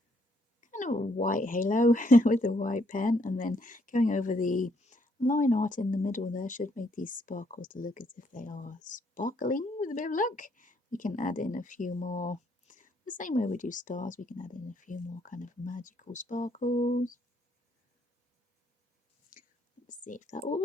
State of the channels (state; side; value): normal; both; correlation 0.71